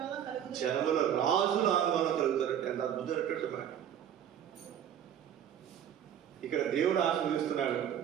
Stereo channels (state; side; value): quieter; left; 9.7 dB